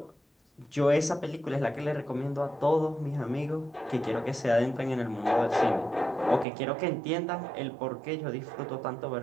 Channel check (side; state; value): left; drops out; at 6.5 s